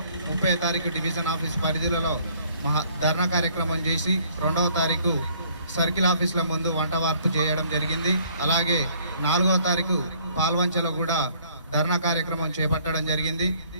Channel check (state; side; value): inverted; both; correlation -0.60